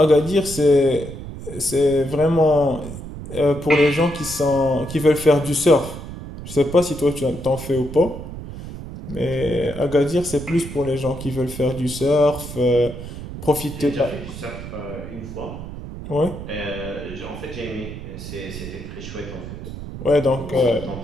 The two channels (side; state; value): right; noise; rumble, 10 dB below the sound